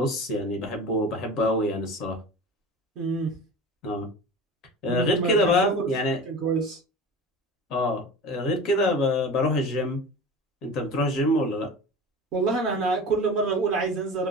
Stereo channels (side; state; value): both; normal; correlation 0.34